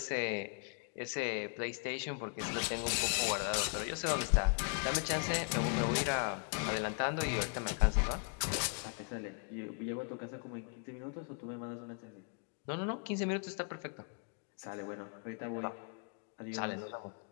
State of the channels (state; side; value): quieter; right; 37.9 dB